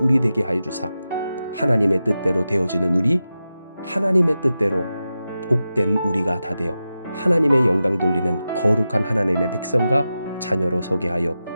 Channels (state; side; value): inverted; both; correlation -0.92